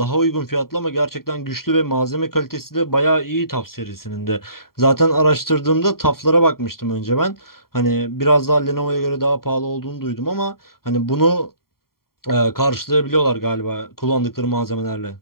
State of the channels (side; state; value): right; late; 0.93 ms